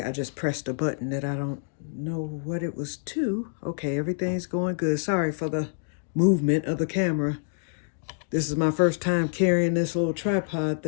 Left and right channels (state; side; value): silent; right; digital silence